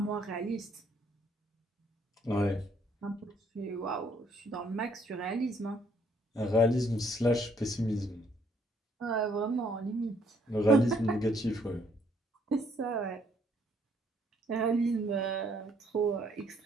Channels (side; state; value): both; normal; correlation 0.67